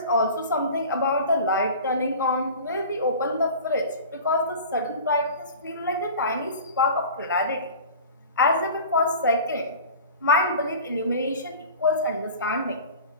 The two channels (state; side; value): inverted; both; correlation -0.38